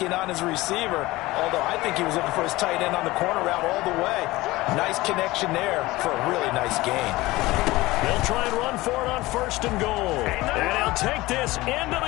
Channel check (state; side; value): quieter; right; 19.4 dB